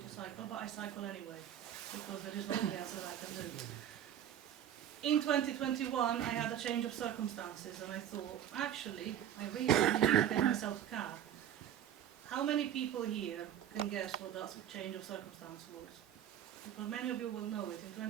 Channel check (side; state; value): left; quieter; 10.3 dB